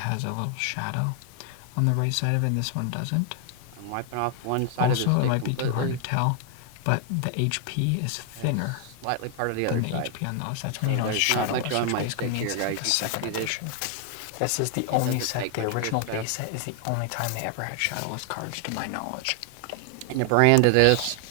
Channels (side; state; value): both; different; correlation 0.00